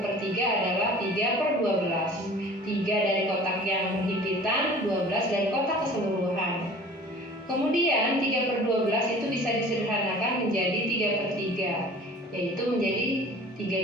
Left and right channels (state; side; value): normal; both; correlation 0.45